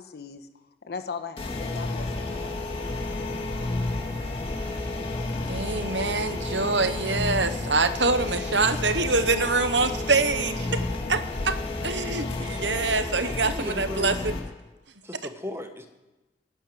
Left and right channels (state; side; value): normal; both; correlation 0.01